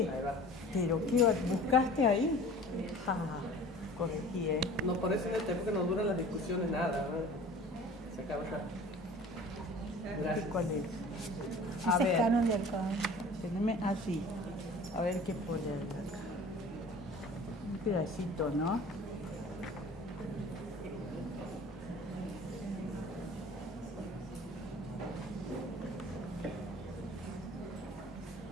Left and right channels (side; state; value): both; normal; correlation 0.44